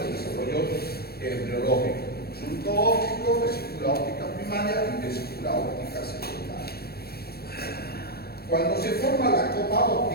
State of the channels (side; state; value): right; late; 0.46 ms